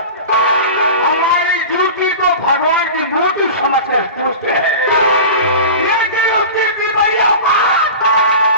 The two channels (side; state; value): both; inverted; correlation -0.32